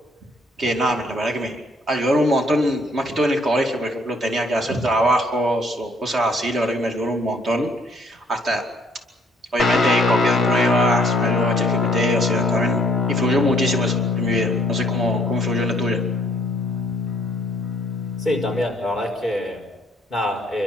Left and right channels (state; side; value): normal; both; correlation 0.64